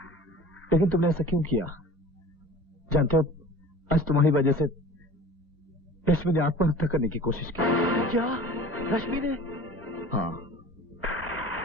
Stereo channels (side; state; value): both; normal; correlation 0.42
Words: लेकिन तुमने ऐसा क्यों किया? जानते हो, आज तुम्हारी वजह से रश्मि ने आत्महत्या करने की कोशिश की। क्या रश्मि ने? हाँ,